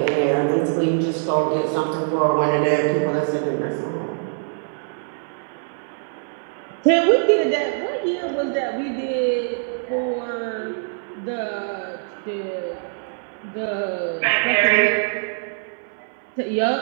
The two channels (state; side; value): silent; left; digital silence